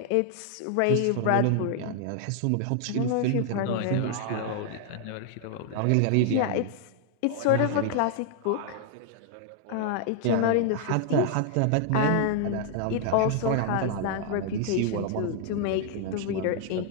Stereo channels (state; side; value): different; both; correlation 0.00